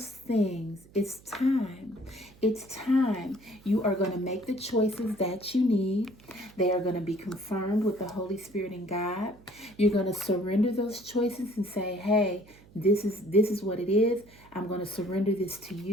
things. It's time. It's time. You are going to make the choices that you need. They are going to be confirmed with the Holy Spirit and God. You're going to surrender those choices and say, hey, this is what it is. I'm going to surrender this to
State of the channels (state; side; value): noise; right; hum, 25 dB below the sound